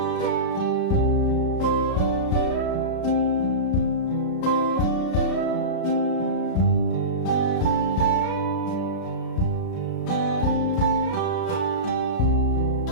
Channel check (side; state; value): right; late; 34 ms